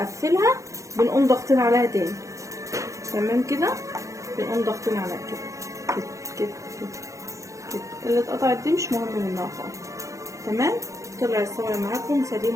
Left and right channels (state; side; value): late; left; 0.15 ms